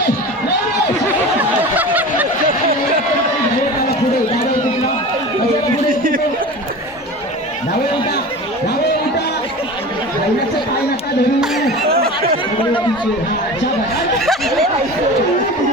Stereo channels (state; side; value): normal; both; correlation 0.33